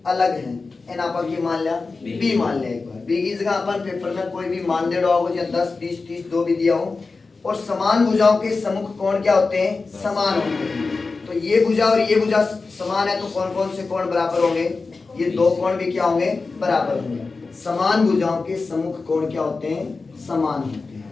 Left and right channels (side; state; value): right; quieter; 4.0 dB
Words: अलग है, एन अपन की मान लिया बी मान लिया। एक बार बी की जगह अपन पेपर में कोई भी मान दे रहा हो, या 10 20 30 दो भी दिया हो। और समान भुजाओं के सम्मुख कोण क्या होते हैं, समान होते हैं। तो ये भुजा और ये भुजा समान है तो कौन कौन से कोण बराबर होंगे, ये दो कोण भी क्या होंगे, बराबर होंगे। समान भुजाओं के सम्मुख कोण क्या होते हैं, समान होते